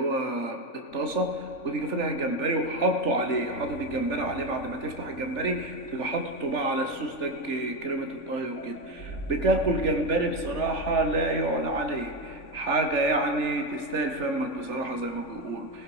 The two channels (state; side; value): late; right; 3.4 ms